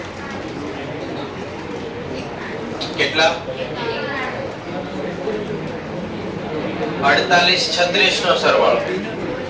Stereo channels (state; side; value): identical; both; correlation 1.00